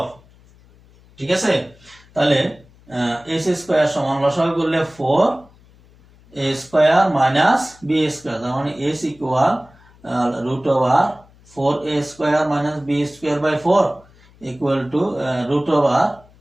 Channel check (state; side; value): noise; left; hum, 27 dB below the sound